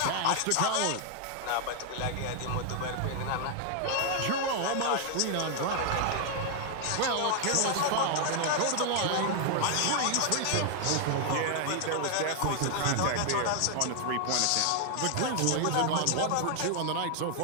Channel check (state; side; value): different; both; correlation 0.00